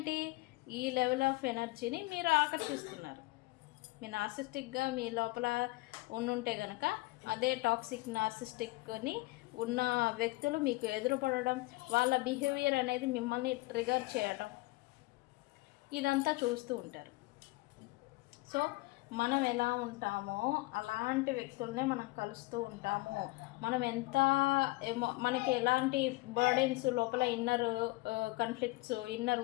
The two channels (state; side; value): quieter; right; 21.9 dB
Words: ఈ లెవెల్ ఆఫ్ ఎనర్జీని మీరు ఆకర్షిస్తున్నారు. మీ నార్సిస్టిక్గా మీ లోపల ఉండుంటే కనుక అదే టాక్సిక్ నార్సిస్టిక్ని ఉన్న వ్యక్తులు మీకు ఎదురుపడడం, వాళ్ళ బిహేవియర్ అనేది మిమ్మల్ని ట్రిగర్ చేయడం, ఇదంతా చూస్తూ ఉంటారు. సో మనం ఎలా ఉంటామో అలాంటి వ్యక్తుల్ని మనం కలుస్తూ ఉంటాము. మనం ఎంత మనకి ఎలాంటి బర్డెన్స్ లోపల inner conflicts, inner